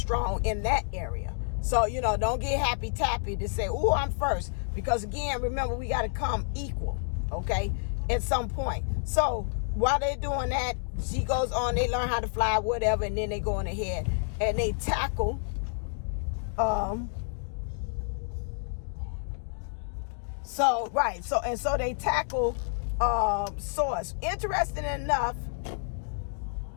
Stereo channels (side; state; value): right; silent; digital silence